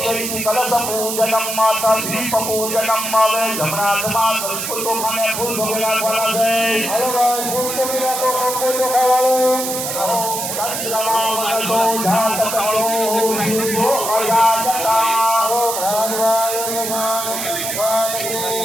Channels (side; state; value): right; noise; hiss, 3 dB below the sound